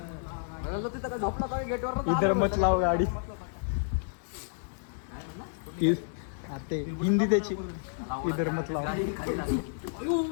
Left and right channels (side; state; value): right; silent; digital silence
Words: झोपला का गेटवर इधर मत लाव गाडी. ते हिंदी त्याची इधर मत लाव.